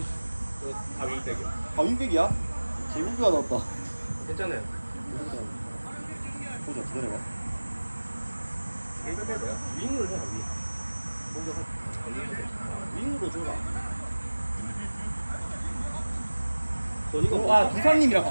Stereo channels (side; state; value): both; inverted; correlation -1.00